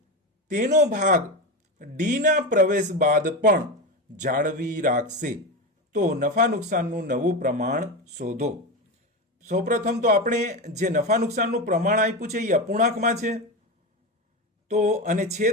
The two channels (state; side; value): normal; both; correlation 0.18